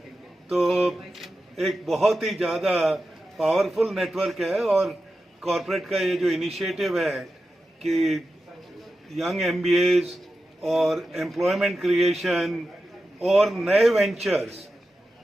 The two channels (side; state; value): both; normal; correlation 0.92